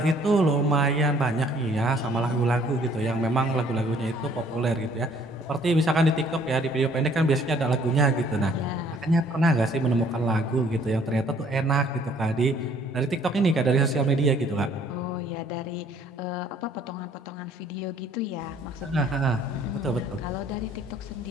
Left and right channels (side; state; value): both; normal; correlation 0.60